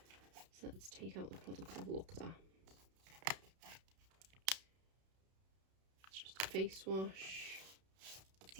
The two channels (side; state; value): left; late; 32 ms